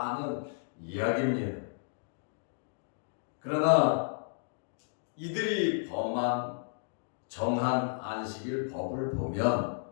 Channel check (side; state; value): right; silent; digital silence